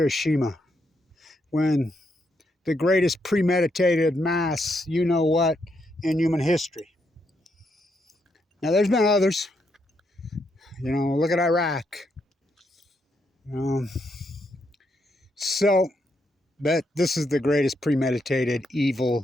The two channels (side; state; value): both; normal; correlation 0.79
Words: when the greatest premeditated mass, you know what, in human history. Now there's been others. Look at Iraq. So, but this is the greatest premeditated